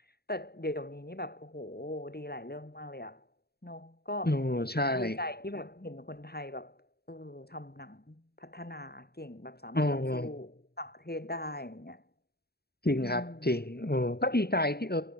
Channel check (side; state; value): right; late; 0.46 ms